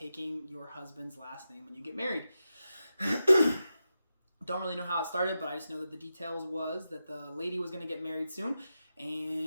your husband's last name when you get married. Don't really know how it started, but I just know that the details was that the lady was going to get married soon,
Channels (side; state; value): both; inverted; correlation -0.90